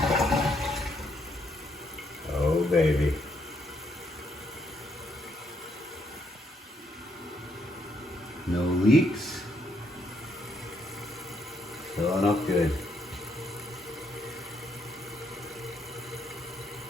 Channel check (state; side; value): normal; both; correlation 0.74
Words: Oh, baby. No leaks. Filling up good.